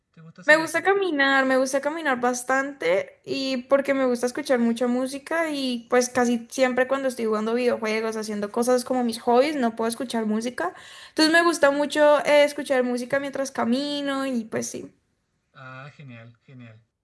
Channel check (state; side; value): identical; both; correlation 1.00